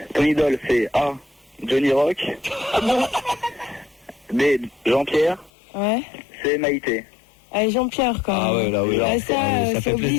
Ton idole, c'est A. Johnny Rock. B. Jean-Pierre. Ouais. C. Maïté. Allez, Jean-Pierre, quoi. Ah ouais, là, oui. Ah, là, ça, ça c'est fait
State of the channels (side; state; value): right; drops out; at 5.5 s